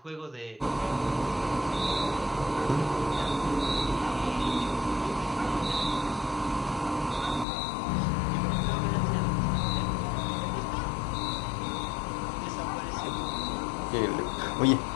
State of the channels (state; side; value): drops out; right; at 7.5 s